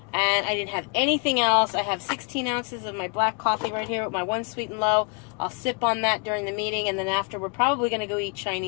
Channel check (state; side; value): quieter; right; 36.4 dB